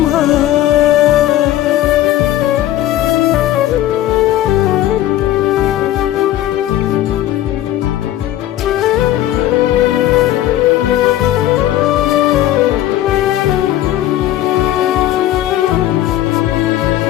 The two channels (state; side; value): quieter; right; 13.5 dB